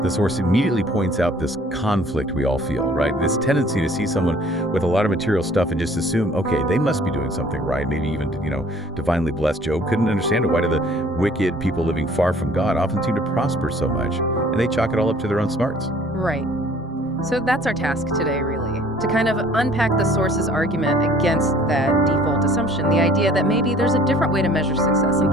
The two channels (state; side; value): normal; both; correlation 0.54